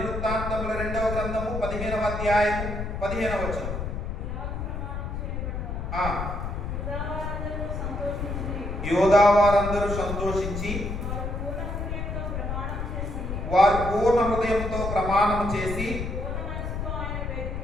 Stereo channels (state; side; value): noise; left; rumble, 4 dB below the sound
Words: 2వ గ్రంథము 15వ అధ్యాయము 15వ వచనం. యోధావారందరూ సంతోషించి వారు పూర్ణ హృదయంతో ప్రమాణం చేసి